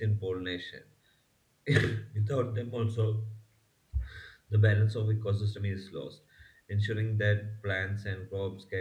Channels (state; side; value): identical; both; correlation 1.00